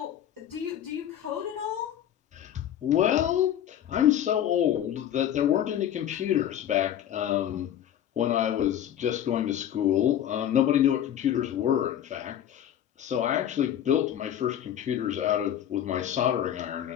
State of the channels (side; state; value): right; quieter; 10.6 dB